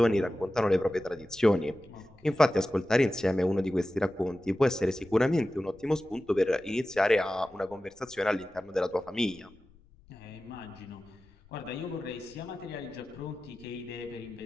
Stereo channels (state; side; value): noise; left; rumble, 27 dB below the sound